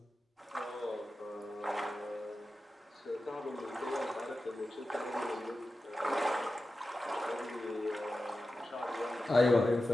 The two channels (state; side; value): normal; both; correlation 0.93